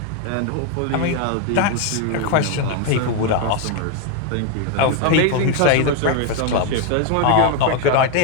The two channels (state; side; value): different; both; correlation 0.01